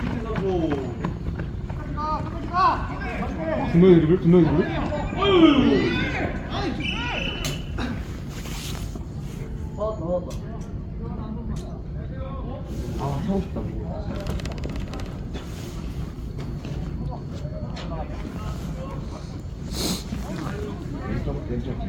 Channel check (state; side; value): identical; both; correlation 1.00